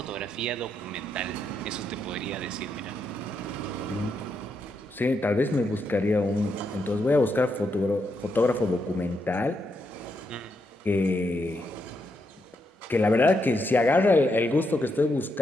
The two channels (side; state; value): both; normal; correlation 0.81